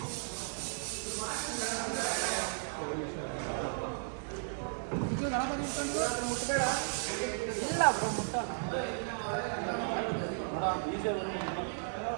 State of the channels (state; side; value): silent; left; digital silence